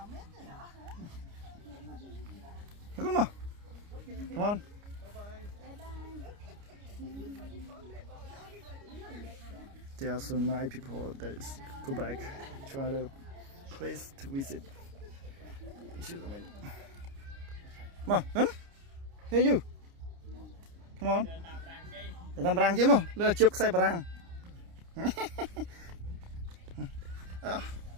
Come on. There are so many people that go back to other place to visit. Come on, hey you. Come on. Làm răng chứ mà, lừa chụp xe răng.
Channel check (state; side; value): late; left; 29 ms